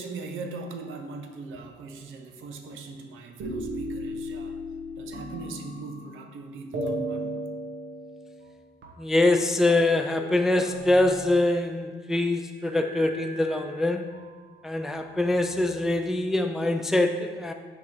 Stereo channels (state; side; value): normal; both; correlation 0.84